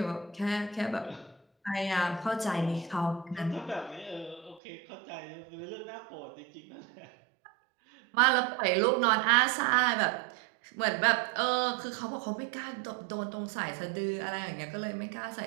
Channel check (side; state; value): left; drops out; at 4.6 s